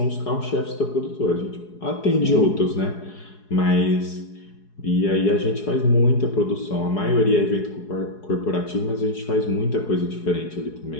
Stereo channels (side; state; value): right; late; 4.8 ms